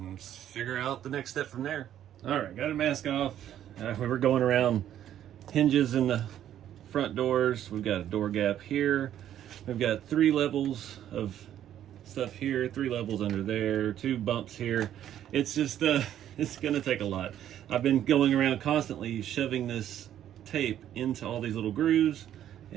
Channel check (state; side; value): quieter; left; 11.0 dB